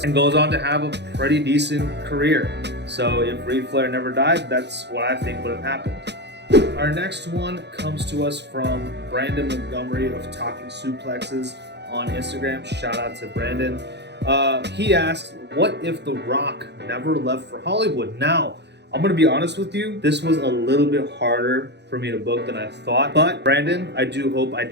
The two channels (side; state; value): left; late; 0.50 ms